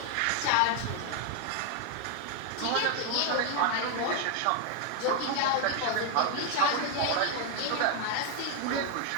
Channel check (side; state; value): both; different; correlation 0.01